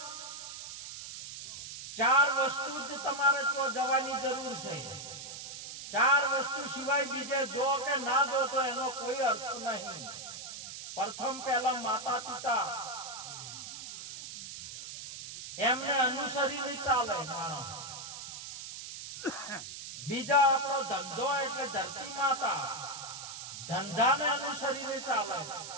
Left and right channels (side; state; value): right; noise; hiss, 10 dB below the sound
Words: ચાર વસ્તુ જ તમારે તો જવાની જરૂર છે. ચાર વસ્તુ સિવાય બીજે જો કે ના જો તો એનો કોઈ અર્થ નહીં. પ્રથમ પહેલા માતા પિતા, એમને અનુસરીને ચાલે માણસ. બીજા આપણો ધંધો એટલે ધરતી માતા, ધંધાને અનુસરીને ચાલે.